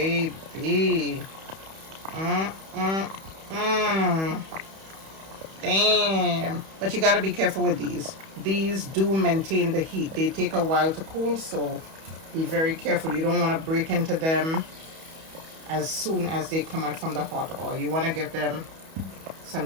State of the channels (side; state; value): left; late; 31 ms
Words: Damn. But you gotta be careful with these. These do maintain the heat. They take a while to cool, so be very careful. You don't want to break into them as soon as they come out from the hot oil. You want to give them